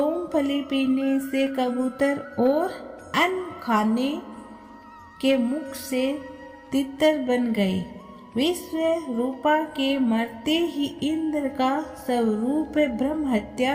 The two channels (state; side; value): identical; both; correlation 1.00